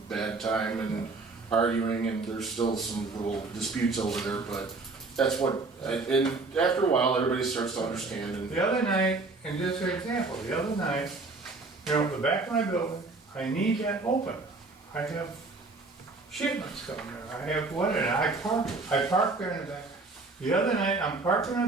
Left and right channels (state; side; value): quieter; left; 3.6 dB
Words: bad time and arguing, and there's still some little disputes over there. But that's what. And after a while, everybody starts to understand. And The other night, and just for example, the other night, you know, the back of my building, I need that open. I have shipments coming in. I have one, and I park there in the back. The other night, I'm parked in